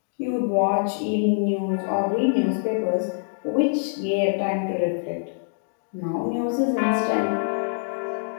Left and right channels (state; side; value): silent; right; digital silence